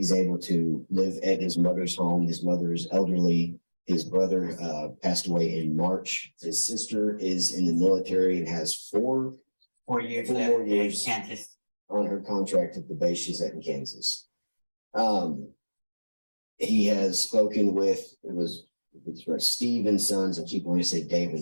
able to live at his mother's home. His mother is elderly. His brother passed away in March. His sister is in the military and has 4 years Four left more in years. Kansas. on her contract at the base she's at in Kansas. He has spoken with, it's right, Steve and Sons. I keep wanting to say Dave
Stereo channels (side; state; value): both; inverted; correlation -1.00